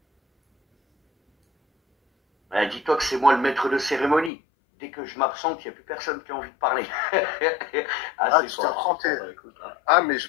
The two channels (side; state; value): right; drops out; at 4.3 s